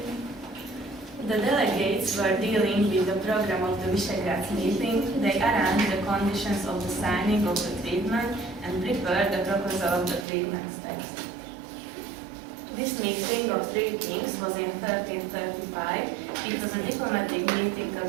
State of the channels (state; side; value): drops out; left; at 10.2 s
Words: The delegates were dealing with the program of the Visegrad meeting. They arranged the conditions of the signing of the treatment and prepared the proposal of the treatment text. This meeting of three kings was in 1335. It was a diplomatic meeting